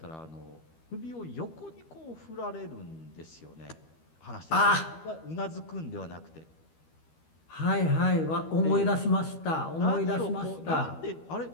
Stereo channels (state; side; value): late; right; 13 ms